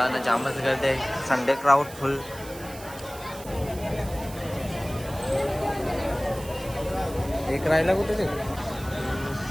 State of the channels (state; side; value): noise; right; hiss, 16 dB below the sound